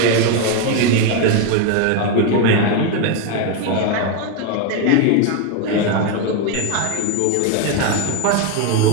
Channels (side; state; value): both; different; correlation 0.02